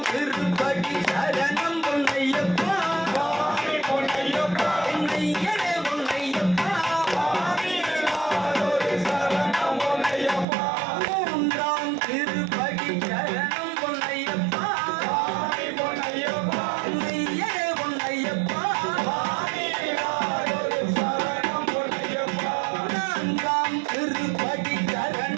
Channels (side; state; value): left; drops out; at 10.5 s